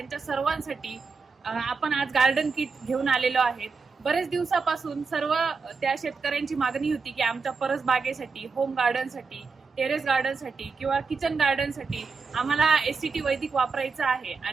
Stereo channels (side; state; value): left; quieter; 4.8 dB